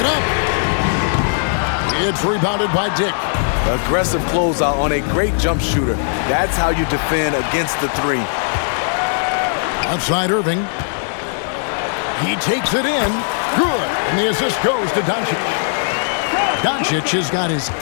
up. It's rebounded by Dick. Aggressive closeout on a great jump shooter. That's how you defend against the 3. Outside Irving. He takes it in. Good. And the assist goes to Doncic. Doncic has got his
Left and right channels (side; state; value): right; silent; digital silence